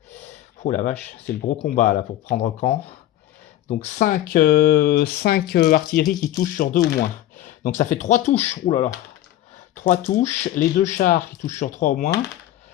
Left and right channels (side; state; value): right; quieter; 13.4 dB